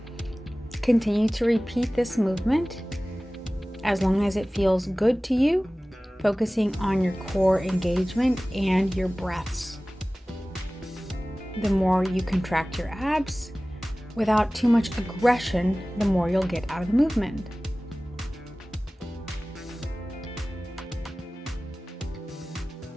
Continue to repeat this movement as long as it feels good to you, focusing on your core engagement and your breaths. The more you contract your abs without too much aggression, the more you'll get out of the movement.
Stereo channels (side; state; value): both; normal; correlation 0.98